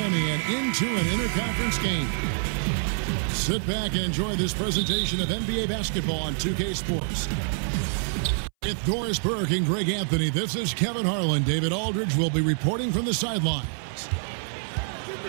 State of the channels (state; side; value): silent; left; 61 dB below the other